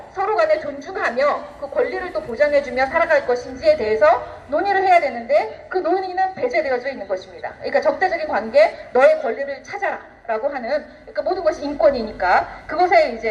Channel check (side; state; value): both; identical; correlation 1.00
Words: 서로 간에 존중하며 그 권리를 또 보장해주며 살아갈 것인지에 대해서 논의를 해야 되는데 그 논의는 배제되어져 있는 것입니다. 그러니까 적대적인 관계, 너의 권리를 찾아라 라고 하는 그러니까 모든 것이 인권이니까 그것에